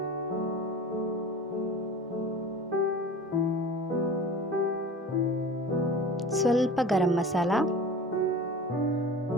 ಸ್ವಲ್ಪ ಗರಂ ಮಸಾಲ,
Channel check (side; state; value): both; normal; correlation 0.38